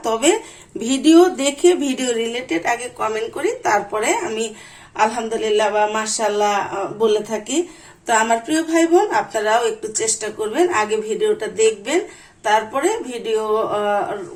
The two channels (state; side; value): identical; both; correlation 1.00